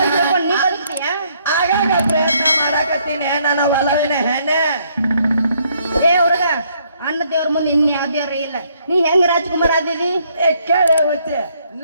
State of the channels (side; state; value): both; inverted; correlation -0.69